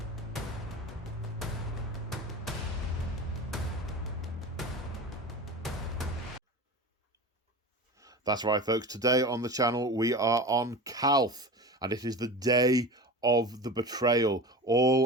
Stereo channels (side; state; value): both; normal; correlation 0.31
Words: That's right, folks. Today on the channel, we are on Calth, and it is the day of the betrayal